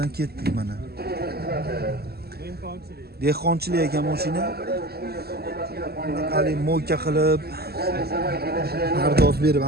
ketdik mana. Dehqonchilik ekan mashina. Hali mo'ka qilib pardoz berib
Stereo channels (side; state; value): left; late; 0.46 ms